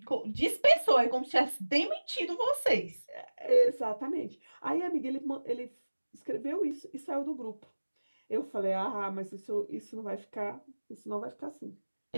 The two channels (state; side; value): inverted; both; correlation -1.00